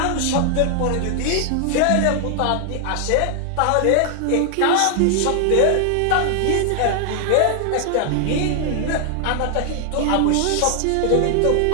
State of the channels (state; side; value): different; both; correlation 0.00